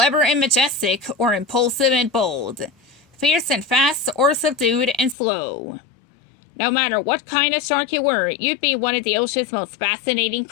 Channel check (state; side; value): drops out; right; at 5.2 s